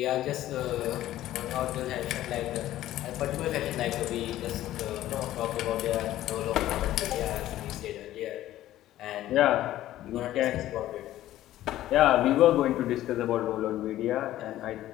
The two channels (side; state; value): right; quieter; 14.0 dB